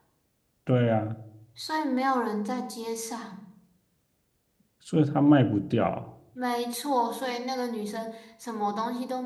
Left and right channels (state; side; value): identical; both; correlation 1.00